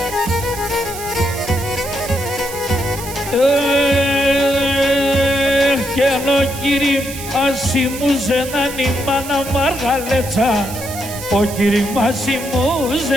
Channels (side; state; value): right; noise; hiss, 11 dB below the sound